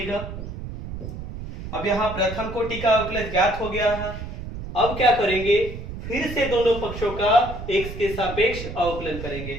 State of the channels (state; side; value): noise; right; rumble, 9 dB below the sound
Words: अब यहाँ प्रथम कोटि का अवकलज ज्ञात हो गया है। अब क्या करेंगे, फिर से दोनों पक्षों का x के सापेक्ष अवकलन करेंगे।